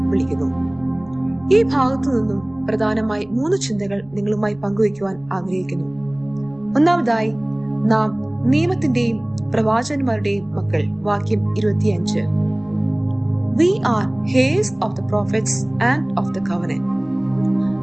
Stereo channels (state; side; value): noise; right; hum, 28 dB below the sound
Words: വിളിക്കുന്നു. ഈ ഭാഗത്തു നിന്നും പ്രധാനമായി 3 ചിന്തകൾ നിങ്ങളുമായി പങ്കുവയ്ക്കുവാൻ ആഗ്രഹിക്കുന്നു. ഒന്നാമതായി, നാം നിയമത്തിന്റെയും പ്രവാചകന്മാരുടെയും മക്കൾ. വാക്യം 25. We are heirs of the prophets and of the covenant.